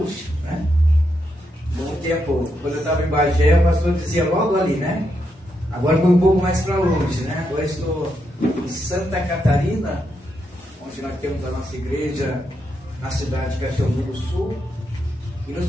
né? Muito tempo, quando eu estava em Bagé, o pastor dizia logo ali, né? Agora foi um pouco mais para longe, né? Agora estou em Santa Catarina, onde nós temos a nossa igreja na cidade de Caxiambu do Sul. E nos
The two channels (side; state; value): both; normal; correlation 0.82